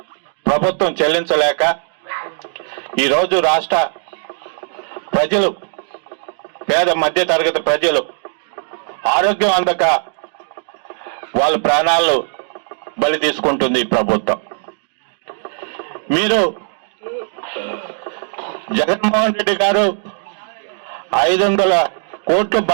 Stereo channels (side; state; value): left; silent; digital silence